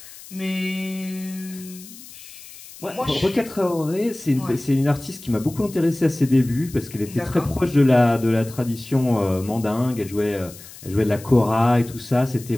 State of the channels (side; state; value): left; noise; hiss, 18 dB below the sound